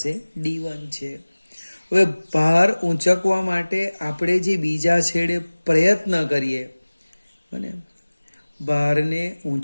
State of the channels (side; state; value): both; inverted; correlation -1.00